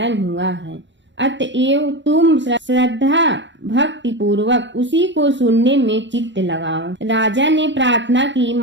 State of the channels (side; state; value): left; late; 0.53 ms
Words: हुआ है। अतएव तुम श्रद्धा भक्ति पूर्वक उसी को सुनने में चित्त लगाओ। राजा ने प्रार्थना की,